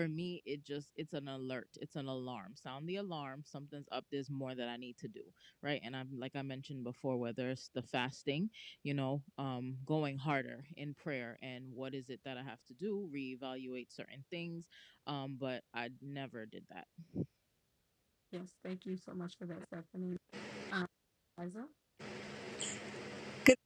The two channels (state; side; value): identical; both; correlation 1.00